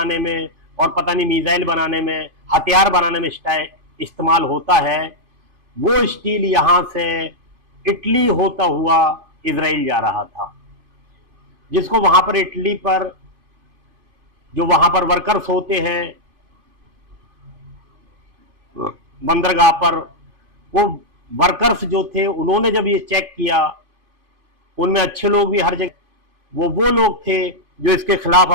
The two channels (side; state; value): left; late; 2.5 ms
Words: में और पता नहीं मिसाइल बनाने में, हथियार बनाने में इस्तेमाल होता है, वो स्टील यहां से इटली होता हुआ इजराइल जा रहा था। जिसको वहां पर इटली पर जो वहां पर वर्कर्स होते हैं बंदरगाह पर, वो वर्कर्स जो थे उन्होंने जब ये चेक किया, उनमें अच्छे लोग भी हर जगह, वो लोग थे जो इसके खिलाफ